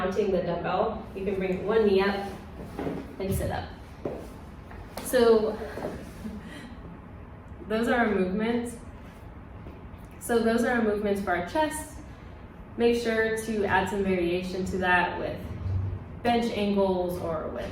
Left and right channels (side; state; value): both; identical; correlation 1.00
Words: the dumbbell, you can bring 1 knee up and sit up. So those are our movements. So those are our movements for our chest. Make sure to add some variation to that with bench angles or with